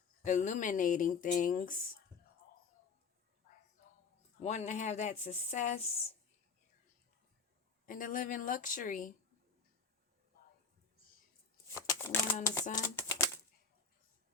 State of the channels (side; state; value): right; quieter; 5.2 dB